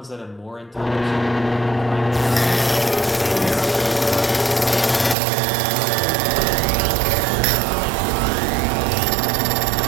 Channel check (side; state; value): left; drops out; at 5.2 s